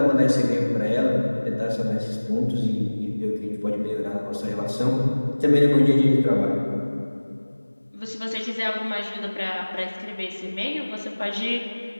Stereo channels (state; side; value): inverted; both; correlation -1.00